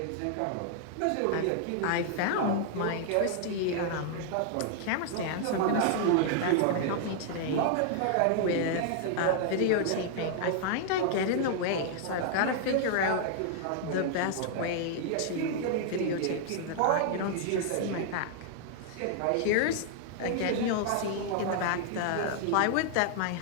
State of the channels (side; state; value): both; different; correlation 0.00